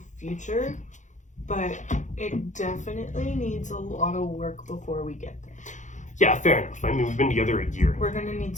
future, but it definitely needs a lot of work before we get there. Yeah, fair enough. I mean, we've been together a year. We're gonna need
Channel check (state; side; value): late; right; 0.35 ms